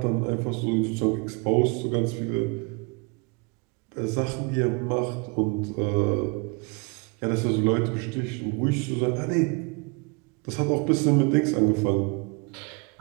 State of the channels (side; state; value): left; quieter; 31.6 dB